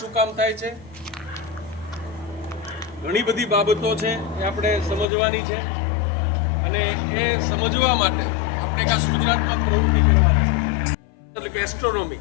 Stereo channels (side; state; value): right; drops out; at 5.1 s